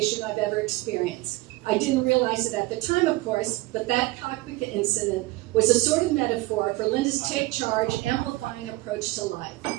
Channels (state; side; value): quieter; left; 20.5 dB